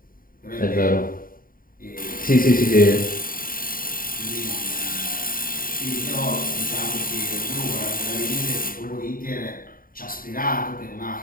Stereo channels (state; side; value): late; right; 0.41 ms